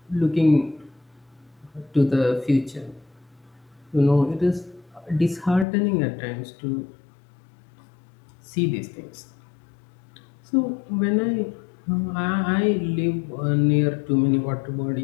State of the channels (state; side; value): drops out; right; at 5.7 s